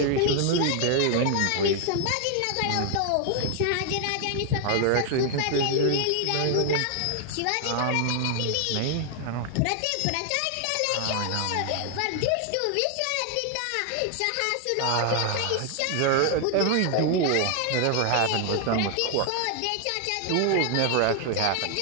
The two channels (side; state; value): both; different; correlation 0.00